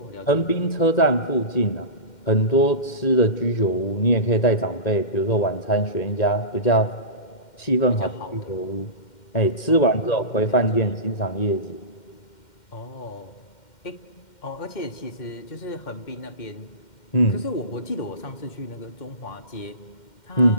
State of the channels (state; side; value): late; right; 2.1 ms